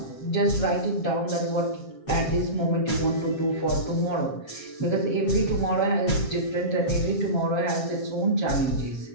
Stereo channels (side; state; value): right; late; 7.4 ms